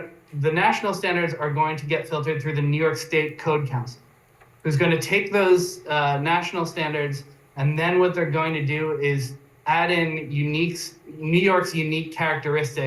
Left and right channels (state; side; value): identical; both; correlation 1.00